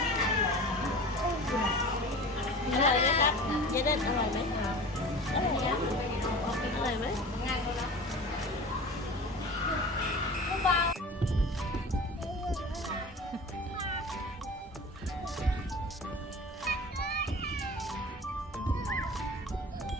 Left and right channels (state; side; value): normal; both; correlation 0.37